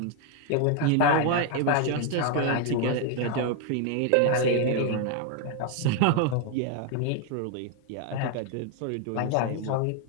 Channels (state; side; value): different; both; correlation 0.01